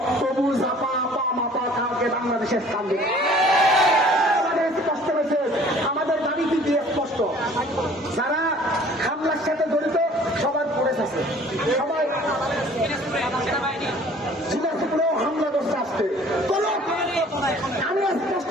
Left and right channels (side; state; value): both; normal; correlation 0.52